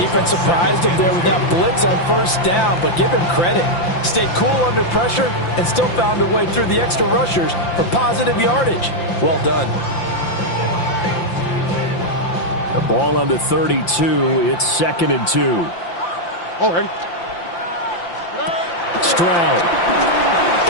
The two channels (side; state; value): right; late; 5.8 ms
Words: surprised him there with that blitz on first down, but give him credit. Stayed cool under pressure and still found a way through the extra rushers for positive yardage. Well done. The ball on the 32. It's second and 2. Oh, ready. Stroud.